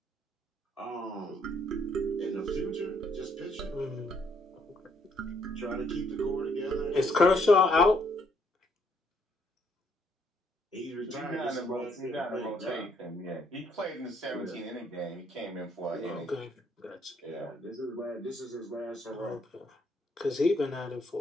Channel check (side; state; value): both; normal; correlation 0.69